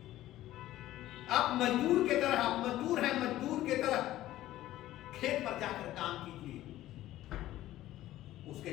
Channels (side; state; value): right; quieter; 14.6 dB